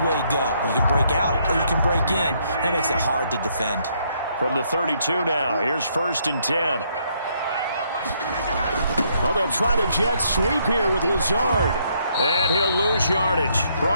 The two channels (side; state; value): both; inverted; correlation -0.71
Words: go. You can break out or you can break in. That makes it hard to defend. From the 32 now, here's 1st and 10. Oh, they'll try the jet sweep here with Lazard. And he'll lose yardage.